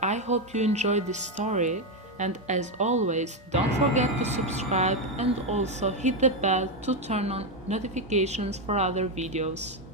I hope you enjoyed this story, and as always, don't forget to subscribe and also hit the bell to turn on notifications for other videos.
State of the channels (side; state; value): both; normal; correlation 0.07